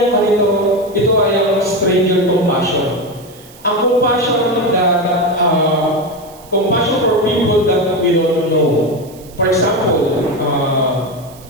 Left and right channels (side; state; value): right; noise; hiss, 23 dB below the sound